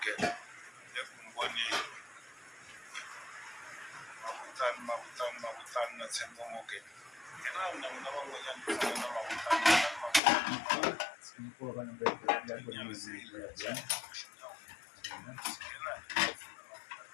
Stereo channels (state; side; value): drops out; right; at 10.2 s